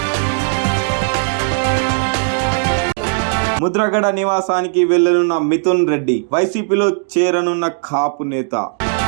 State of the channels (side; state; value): left; silent; 68 dB below the other